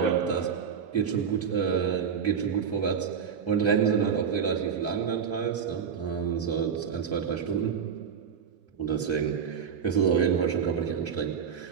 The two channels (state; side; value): quieter; left; 7.0 dB